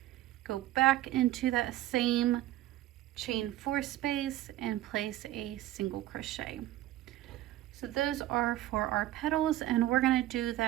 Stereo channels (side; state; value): left; quieter; 14.6 dB